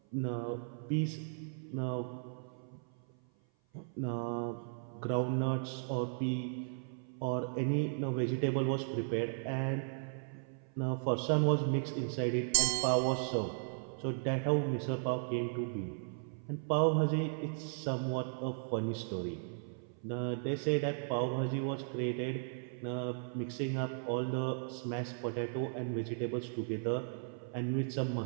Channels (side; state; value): left; silent; 54 dB below the other